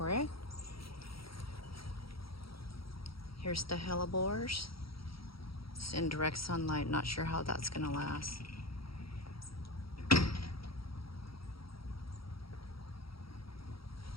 it. Here's the hellebores. It's in direct sunlight, not sure how that's gonna last.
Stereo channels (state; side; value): late; right; 0.75 ms